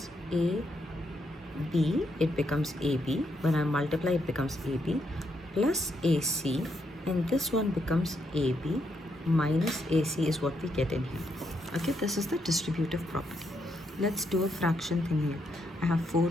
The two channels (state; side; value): normal; both; correlation 0.78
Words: A B, it becomes AB. When I multiply, it becomes AB plus AC, and this one becomes AB minus AC is what we get in here. Okay, this is the distributive property. Let's do a fraction thing here. I have 4